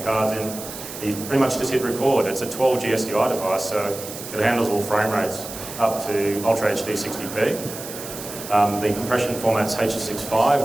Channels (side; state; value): right; noise; hiss, 11 dB below the sound